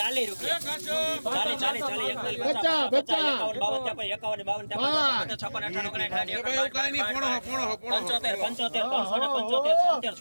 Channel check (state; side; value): inverted; both; correlation -1.00